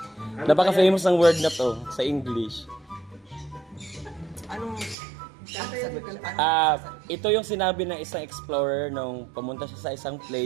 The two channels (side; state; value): left; drops out; at 5.0 s